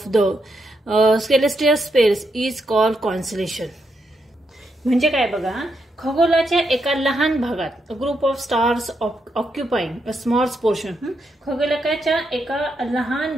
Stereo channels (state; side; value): normal; both; correlation 0.81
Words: the celestial space is called constellation. म्हणजे काय बघा, खगोलाच्या एका लहान भागात group of stars occupying a small portion, खगोलाच्या एका लहान